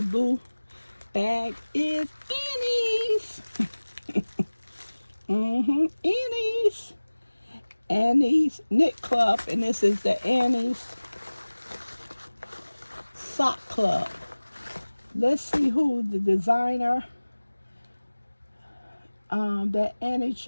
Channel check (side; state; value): both; inverted; correlation -1.00